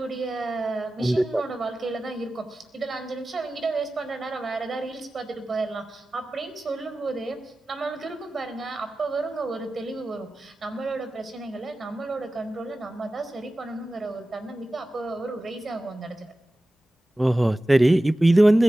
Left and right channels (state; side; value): normal; both; correlation 0.95